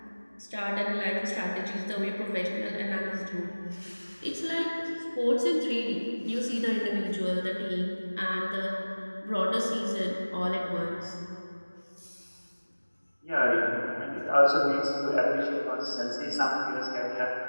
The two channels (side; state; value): both; inverted; correlation -1.00